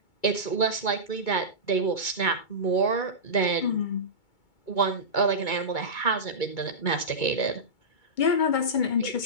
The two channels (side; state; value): right; late; 2.2 ms